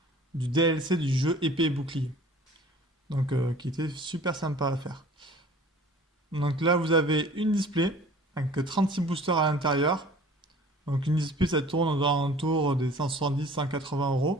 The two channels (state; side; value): normal; both; correlation 0.48